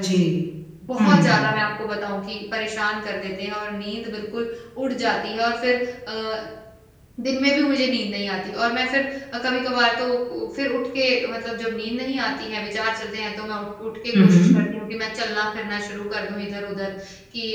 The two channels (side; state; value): both; identical; correlation 1.00